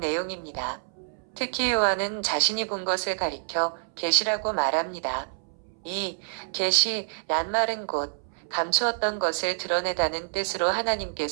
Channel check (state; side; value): silent; left; 60 dB below the other